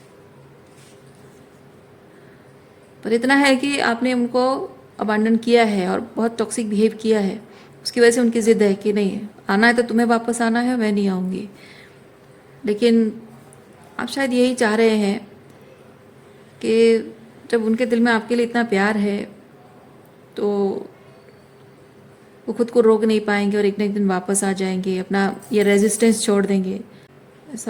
पर इतना है कि आपने उनको अबांडन किया है और बहुत टॉक्सिक बिहेव किया है, उसकी वजह से उनकी ज़िद है कि नहीं, आना है तो तुम्हें वापस आना है, मैं नहीं आऊँगी। लेकिन आप शायद यही चाह रहे हैं कि जब उनके दिल में आपके लिए इतना प्यार है तो वो खुद को रोक नहीं पाएंगे और एक ना एक दिन वापस आ जाएंगे, अपना ये रेजिस्टेंस छोड़ देंगे,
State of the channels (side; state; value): both; identical; correlation 1.00